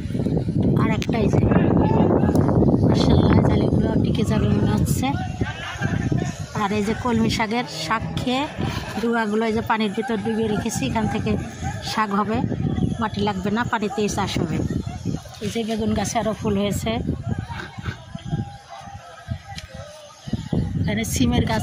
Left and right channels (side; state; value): both; identical; correlation 1.00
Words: আর একটা এই যে মাশাআল্লাহ জালিগুলো টিকে যাবে মনে হচ্ছে। আর এই যে কলমি শাকের শাক খেয়ে ডুয়াগুলো এই যে পানির ভিতর ডুবিয়ে রেখেছি, এখান থেকে শাক হবে, মাটি লাগবে না, পানিতেই চাষ হবে। এই যে বেগুন গাছে আরও ফুল হয়েছে। এখানে সিমের